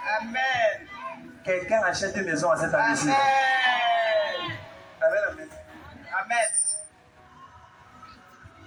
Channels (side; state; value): both; identical; correlation 1.00